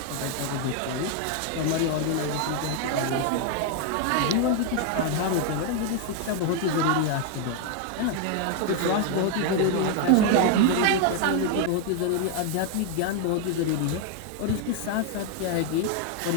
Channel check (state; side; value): different; both; correlation 0.00